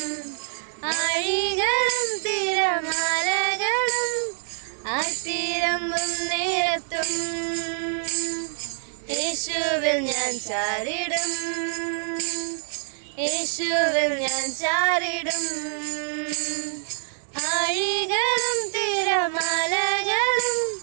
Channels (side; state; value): left; silent; digital silence